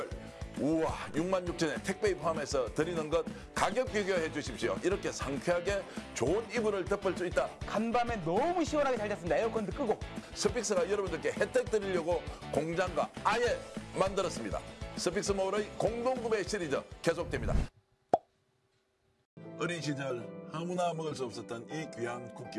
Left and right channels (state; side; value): identical; both; correlation 1.00